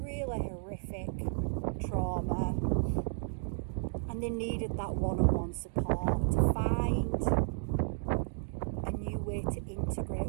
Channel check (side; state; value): left; silent; digital silence